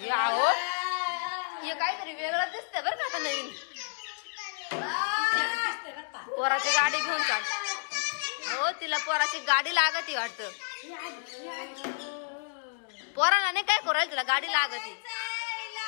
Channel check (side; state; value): right; silent; digital silence